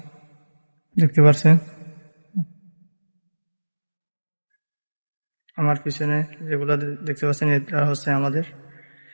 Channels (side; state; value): both; inverted; correlation -1.00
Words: দেখতে পাচ্ছেন আমার পিছনে যেগুলো দেখতে পাচ্ছেন এটা হচ্ছে আমাদের